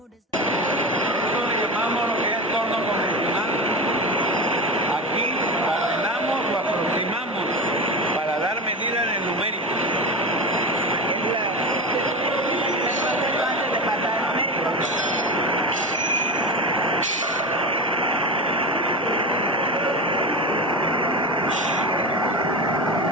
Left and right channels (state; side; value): normal; both; correlation 0.24